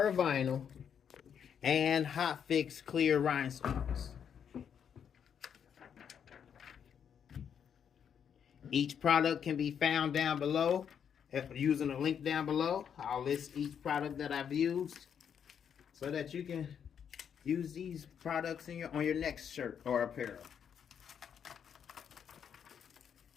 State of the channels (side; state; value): right; quieter; 8.0 dB